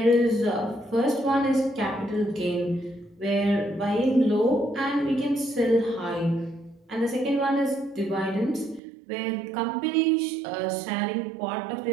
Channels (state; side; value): drops out; left; at 8.8 s